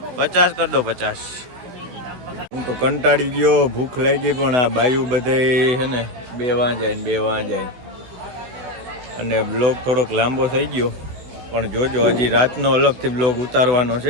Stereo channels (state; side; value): late; left; 16 ms